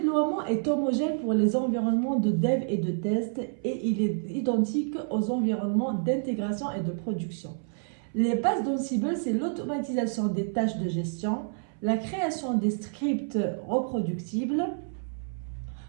est homogène pour les environnements de dev et de test et il est identique aux environnements d'intégration et de production. Les bases d'Ansible, c'est l'automatisation des tâches de gestion, la création des scripts reproductibles.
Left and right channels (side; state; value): left; silent; 59 dB below the other